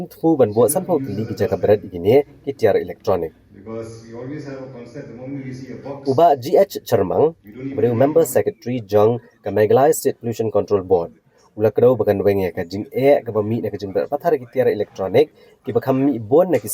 banbo sanpau kili ki jaka berat igini ki tiar elektronik. Uba GH Cermang beri member secretary jang ka Meghalaya State Pollution Control Board. Ula kedau bakan wenge ka jing ka bami na ka jing berat pathar ki tiar elektronik ki bakam bon na ki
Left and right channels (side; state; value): both; identical; correlation 1.00